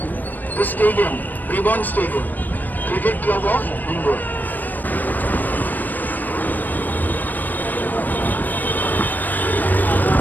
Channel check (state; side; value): late; right; 0.087 ms